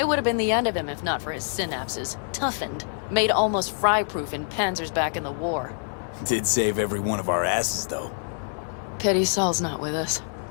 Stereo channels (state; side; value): silent; right; 61 dB below the other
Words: would have been the end of him if not for his synapses. Toughened, made almost fry-proof in panzers back in the war. Did save every one of our asses, though. Pity Saul's not with us.